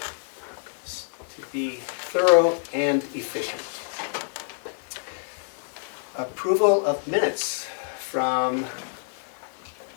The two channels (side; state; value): right; silent; digital silence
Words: be thorough and efficient. Approval of minutes from